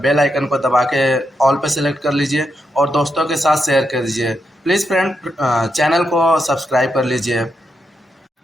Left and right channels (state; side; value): normal; both; correlation 0.83